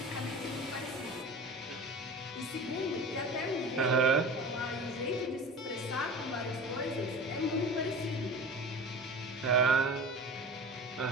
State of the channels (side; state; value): both; normal; correlation 0.35